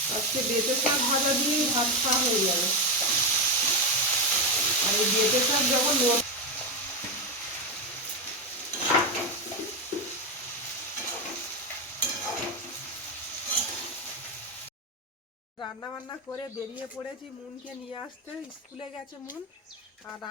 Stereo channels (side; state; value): both; normal; correlation 0.10